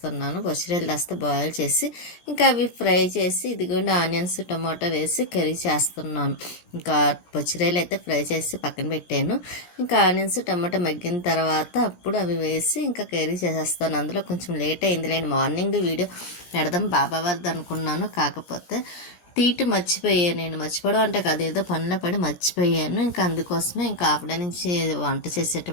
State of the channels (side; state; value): right; late; 17 ms